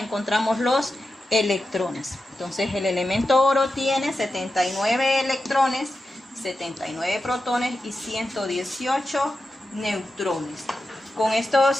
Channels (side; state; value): both; normal; correlation 0.91